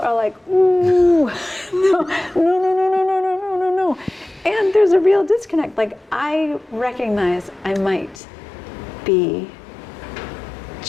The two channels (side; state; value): right; drops out; at 8.2 s